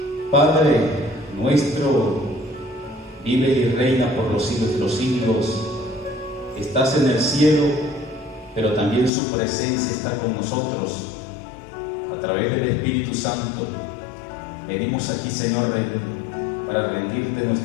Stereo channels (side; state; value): right; drops out; at 9.1 s